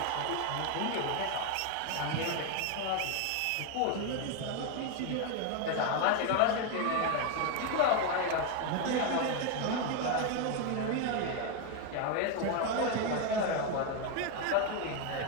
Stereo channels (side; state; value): both; different; correlation 0.01